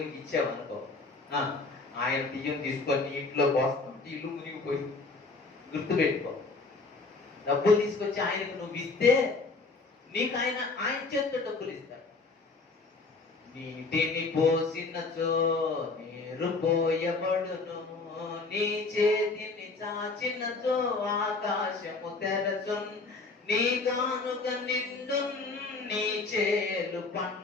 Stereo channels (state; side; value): quieter; right; 3.8 dB